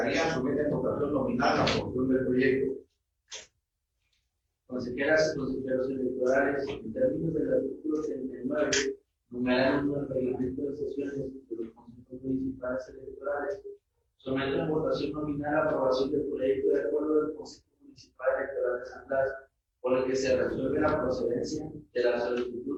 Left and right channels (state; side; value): identical; both; correlation 1.00